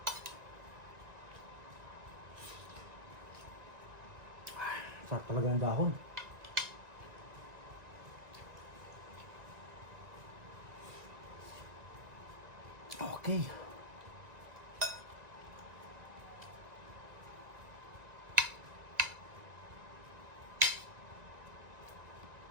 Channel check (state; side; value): late; left; 1.9 ms